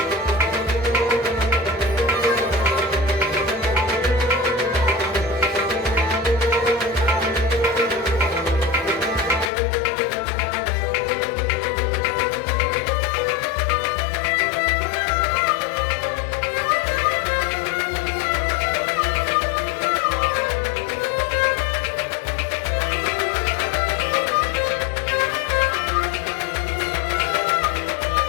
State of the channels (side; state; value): right; drops out; at 9.5 s